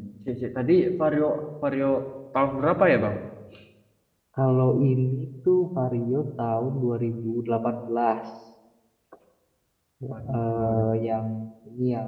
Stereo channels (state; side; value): identical; both; correlation 1.00